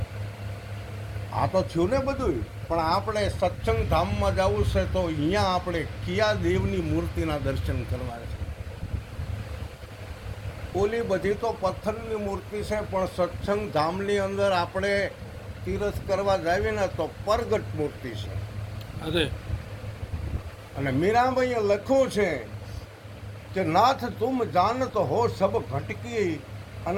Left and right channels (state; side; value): identical; both; correlation 1.00